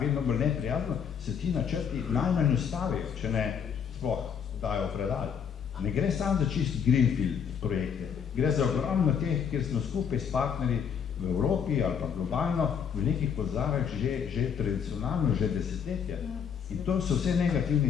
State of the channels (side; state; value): right; quieter; 7.4 dB